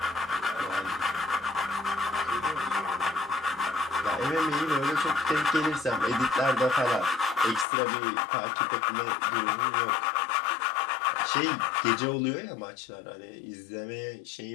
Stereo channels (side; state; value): right; drops out; at 7.7 s